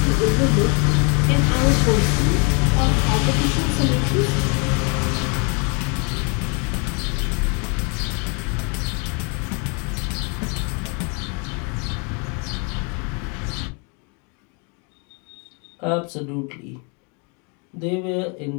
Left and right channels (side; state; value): right; quieter; 34.7 dB